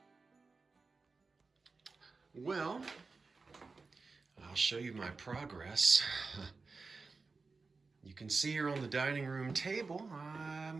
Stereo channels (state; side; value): quieter; left; 4.2 dB